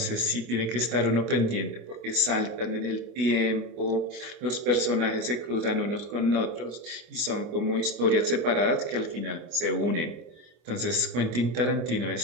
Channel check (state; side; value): late; left; 25 ms